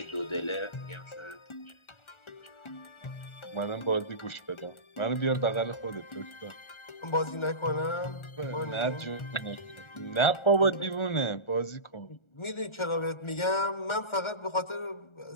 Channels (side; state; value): right; late; 1.4 ms